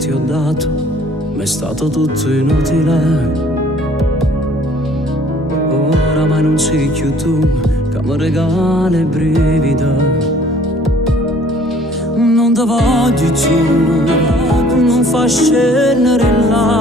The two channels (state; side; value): normal; both; correlation 0.56